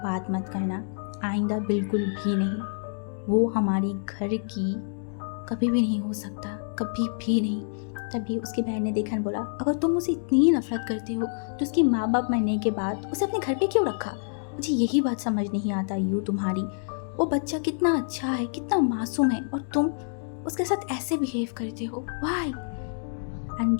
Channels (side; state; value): right; silent; digital silence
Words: बात मत करना, आइंदा बिल्कुल भी नहीं। वो हमारी घर की कभी भी नहीं हो सकता, कभी भी नहीं। तभी उसकी बहन ने देखा और बोला अगर तुम उसे इतनी नफरत करते हो तो उसके माँ बाप मरने के बाद उसे अपने घर पे क्यों रखा? मुझे यही बात समझ नहीं आता यू तुम्हारी। वो बच्चा कितना अच्छा है, कितना मासूम है और तुम उसके साथ ऐसे बिहेव करते हो, वाई? एंड